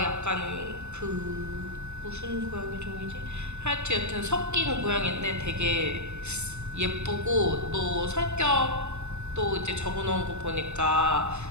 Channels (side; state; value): left; late; 0.82 ms